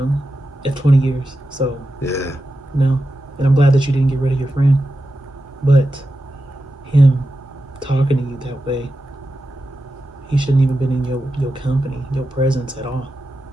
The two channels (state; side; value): normal; both; correlation 0.90